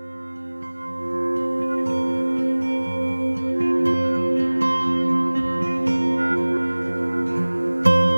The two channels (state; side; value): inverted; both; correlation -1.00